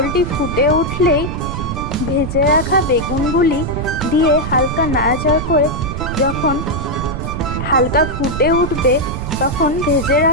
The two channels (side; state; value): right; noise; rumble, 5 dB below the sound